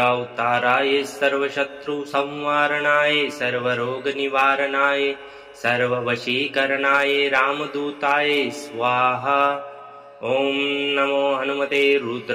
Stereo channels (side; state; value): both; identical; correlation 1.00